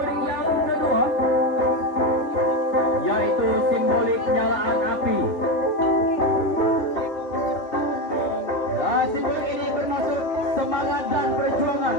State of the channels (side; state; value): right; late; 2.7 ms